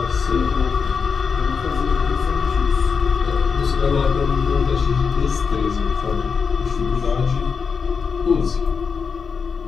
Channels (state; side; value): quieter; right; 5.7 dB